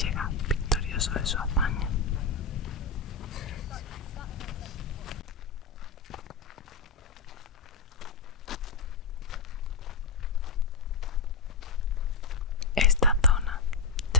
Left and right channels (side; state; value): right; quieter; 4.0 dB